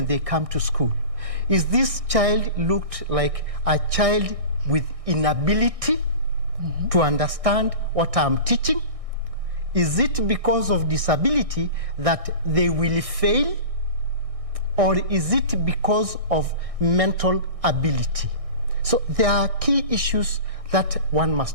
they come to school. Is this child looked like a child with inability to understand what I'm teaching? Is it because of disability that they will fail? Or is it because of mental ability? So there are key issues that one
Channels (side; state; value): left; late; 1.6 ms